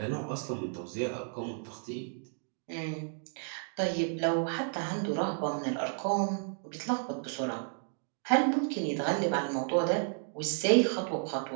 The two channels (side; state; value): left; silent; 56 dB below the other